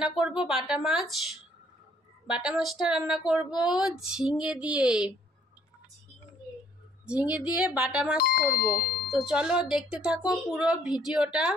করব বাটা মাছ। বাটা মাছটা রান্না করব ঝিঙে দিয়ে। ঝিঙে দিয়ে বাটা মাছ করব। তো চলো দেখতে থাকো পুরো ভিডিওটা।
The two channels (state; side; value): normal; both; correlation 0.62